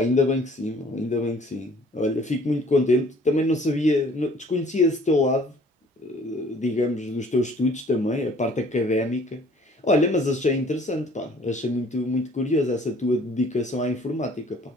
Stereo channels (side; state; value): both; normal; correlation 0.55